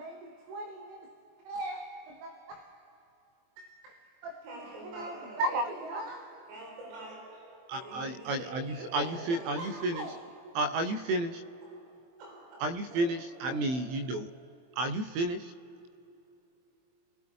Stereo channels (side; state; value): left; late; 23 ms